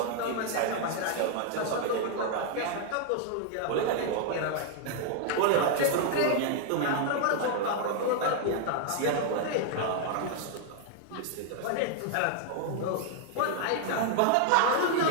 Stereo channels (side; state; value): both; different; correlation 0.00